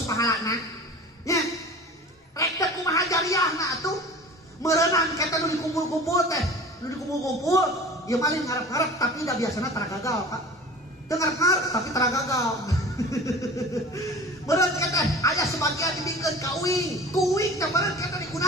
pahalana. Nya. Rek teh kumaha jariahna atuh? Meureunang kita nu dikumpul-kumpul teh, nu dikumpul-kumpul, ieu maling ngarep-ngarep tapi da biasana tara gagal, Pak. Teu ngarep-ngarep tapi tara gagal. Meureun kita aya sebagian dibikeun ka uing, ku uing teh meureun kita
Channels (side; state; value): both; normal; correlation 0.40